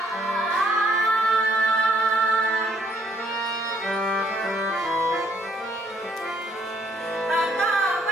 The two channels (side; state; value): both; normal; correlation 0.66